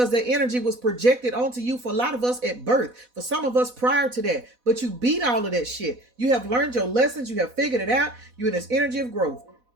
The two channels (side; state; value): left; late; 4.1 ms